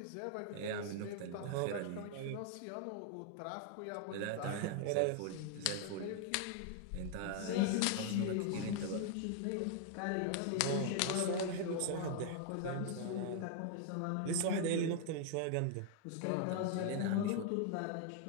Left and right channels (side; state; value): both; different; correlation 0.00